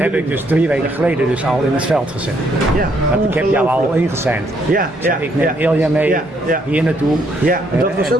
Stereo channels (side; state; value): both; normal; correlation 0.71